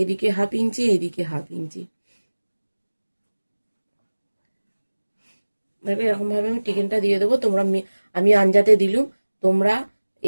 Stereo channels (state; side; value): inverted; both; correlation -1.00